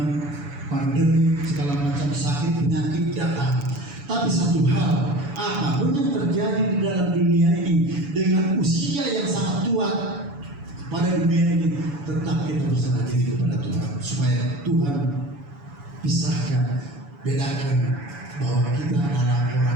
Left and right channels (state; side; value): late; left; 7.0 ms